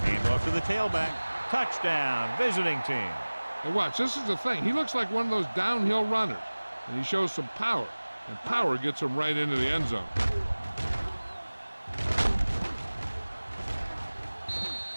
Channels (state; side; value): inverted; both; correlation -1.00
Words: Hand off to the tailback. Touchdown, visiting team. And watch, this is the thing. He looks like one of those downhill runners, and he shows some power, and power gets him right into the end zone.